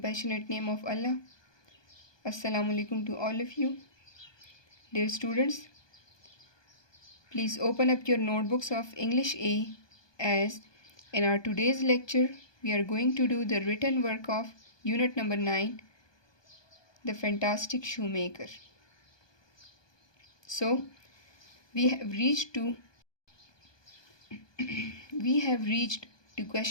name of Allah. Assalamu alaikum to all of you. Dear students, please open up your notebooks of English A, as in our today's lecture we are going to do the written work of unit number 9, The Fantastic Shoemaker. So we have reached to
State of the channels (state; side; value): late; right; 1.2 ms